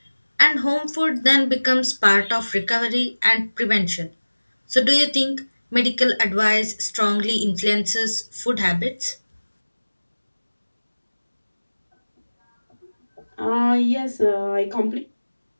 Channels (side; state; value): both; inverted; correlation -1.00